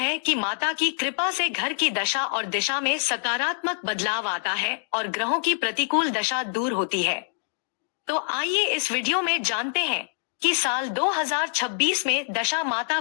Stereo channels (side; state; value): right; silent; digital silence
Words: कि माता की कृपा से घर की दशा और दिशा में सकारात्मक बदलाव आता है और ग्रहों की प्रतिकूल दशा दूर होती है। तो आइए इस वीडियो में जानते हैं कि साल 2026 में दशा माता